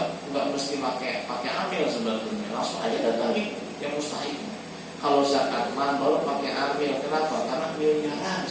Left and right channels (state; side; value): identical; both; correlation 1.00